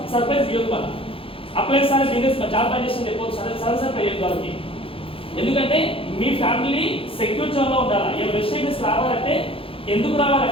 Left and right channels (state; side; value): late; right; 0.27 ms